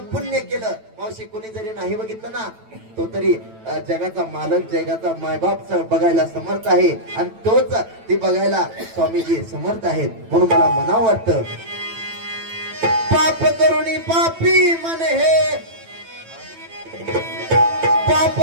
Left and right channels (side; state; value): left; late; 9.1 ms